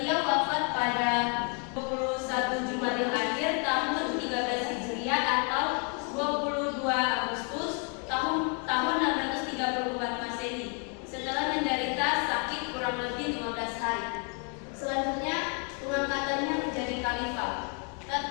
wafat pada 21 Jumadil Akhir tahun 13 Hijriah atau 22 Agustus tahun 634 Masehi setelah menderita sakit kurang lebih 15 hari. Selanjutnya pengangkatannya menjadi khalifah.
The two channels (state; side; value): quieter; right; 36.5 dB